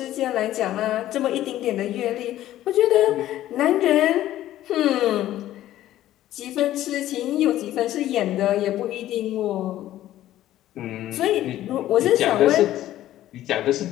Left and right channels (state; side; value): quieter; right; 13.6 dB